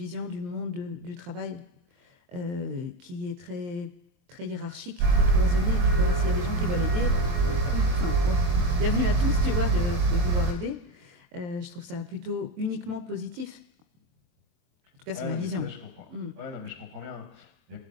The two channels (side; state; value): left; late; 23 ms